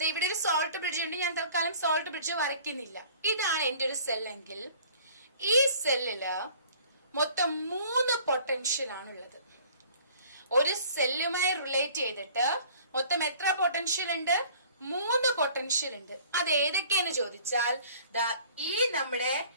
ഇവിടെ ഒരു സോൾട്ട് ബ്രിഡ്ജ് ഉണ്ട്. ഞാൻ തൽക്കാലം സോൾട്ട് ബ്രിഡ്ജ് വരയ്ക്കുന്നില്ല. ഇതാണ് എന്റെ ഒരു സെൽ എങ്കിൽ ഈ സെല്ലില് മൊത്തം 3 പൊട്ടൻഷ്യൽ ആണുള്ളത്. ഒരു സെല്ലുമായി റിലേറ്റ് ചെയ്തിട്ട് മൊത്തം എത്ര പൊട്ടൻഷ്യൽ ഉണ്ട്? 3 പൊട്ടൻഷ്യൽ ഉണ്ട്. അത് ഏതൊക്കെയെന്ന് ചോദിച്ചാൽ ഈ നമ്മുടെ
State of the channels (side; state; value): both; inverted; correlation -0.51